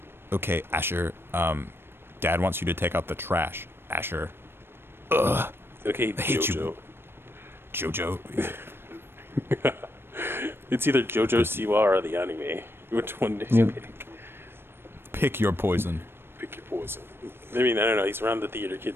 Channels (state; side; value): late; left; 0.11 ms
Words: okay, Asher. Dad wants you to take out the trash, Asher. Ugh. Okay, I hate JoJo. you. JoJo. It's either JoJo Siwa or the anime. Which one did you pick? Pick your poison. Pick your poison. I mean, I don't know. He's around the theater